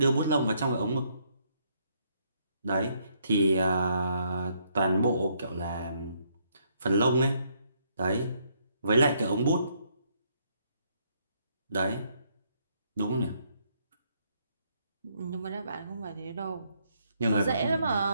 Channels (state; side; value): inverted; both; correlation -0.71